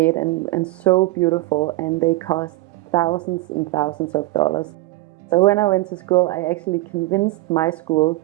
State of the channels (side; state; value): left; quieter; 19.4 dB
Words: and so beautiful, and they cost thousands and thousands of dollars. So when I went to school, I actually convinced my school